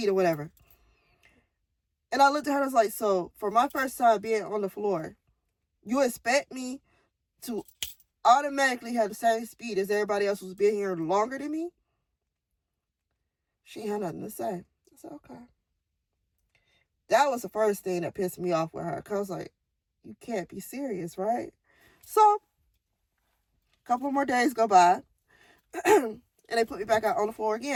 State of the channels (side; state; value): both; identical; correlation 1.00